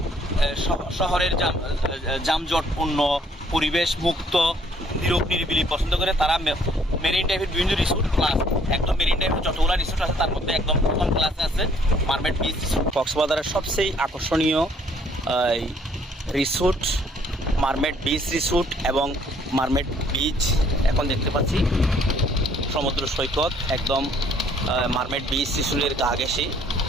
শহরের যানজটপূর্ণ পরিবেশ মুক্ত নীরব নিরিবিলি পছন্দ করে তারা মেরিন ড্রাইভের বিভিন্ন রিসোর্ট প্লাস একদম মেরিন ড্রাইভের যতগুলো রিসোর্ট আছে তার মধ্যে একদম প্রথম ক্লাসে আছে মারমেড বিচ রিসোর্ট। কক্সবাজারের সবচেয়ে আকর্ষণীয় রিসোর্ট মারমেড বিচ রিসোর্ট এবং মারমেড বিচ। এখন দেখতে পাচ্ছি সমুদ্র সৈকত, একদম মারমেড বিচ রিসোর্টের গা ঘেঁষে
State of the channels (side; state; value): both; normal; correlation 0.62